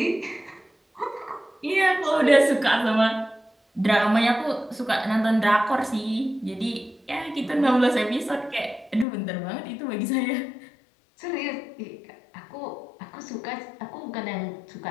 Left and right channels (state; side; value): drops out; right; at 9.1 s